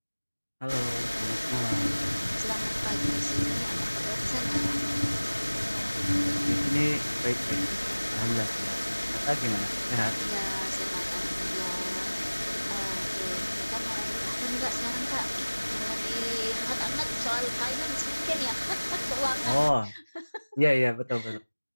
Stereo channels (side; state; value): both; inverted; correlation -1.00